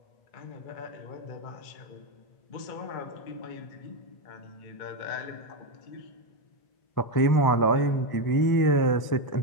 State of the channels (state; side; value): late; right; 1.0 ms